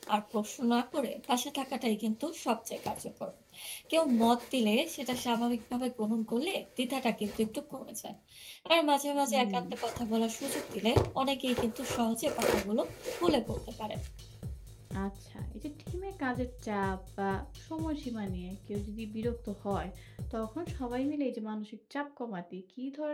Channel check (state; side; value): identical; both; correlation 1.00